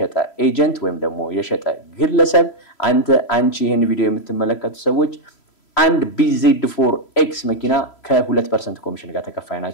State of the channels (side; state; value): right; late; 3.0 ms